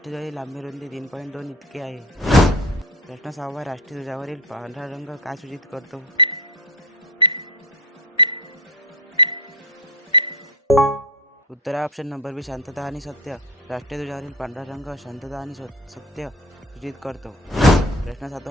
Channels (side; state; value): both; normal; correlation 0.26